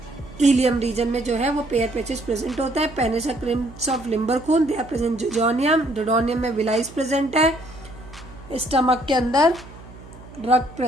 इलियम रीजन में जो है वो पेयर पैचेस प्रेजेंट होता है। Paneth crypts of Lieberkuhn they are present jejunum, duodenum में विलाइज प्रेजेंट है, स्टमक के अंदर रग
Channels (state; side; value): noise; right; hum, 19 dB below the sound